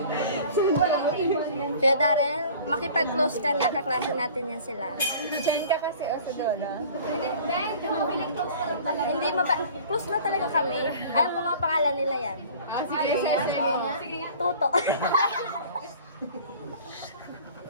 Kaya Darrell, makipag-close ka na, kaklase natin yan sila. Diyan ka kasi o sa Dolo. Hindi close na talaga kami. Alam ko mga pangalan nila yan. Sige nga. Toto.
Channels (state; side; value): inverted; both; correlation -0.46